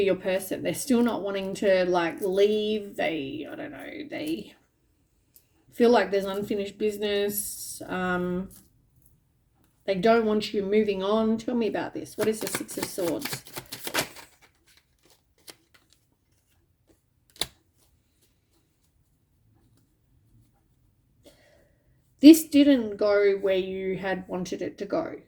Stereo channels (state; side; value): identical; both; correlation 1.00